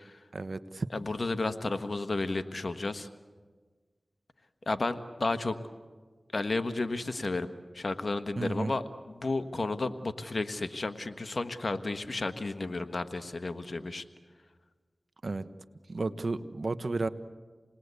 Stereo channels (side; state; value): both; normal; correlation 0.96